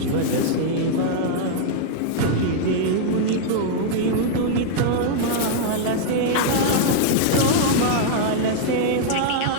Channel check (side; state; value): both; different; correlation -0.01